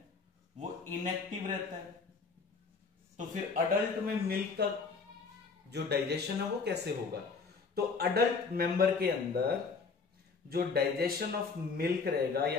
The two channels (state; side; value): quieter; right; 4.8 dB